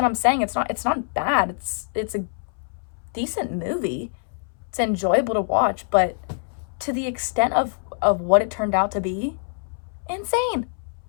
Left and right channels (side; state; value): right; silent; 62 dB below the other